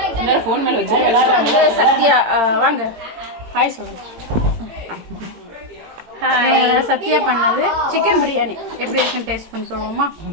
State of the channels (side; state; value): left; late; 18 ms